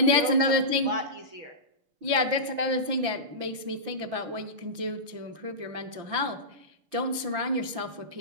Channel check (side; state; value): left; late; 5.9 ms